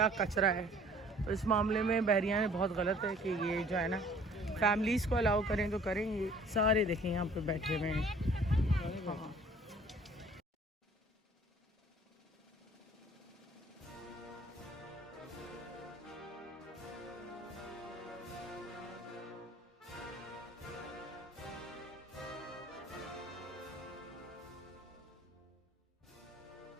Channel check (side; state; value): both; normal; correlation 0.53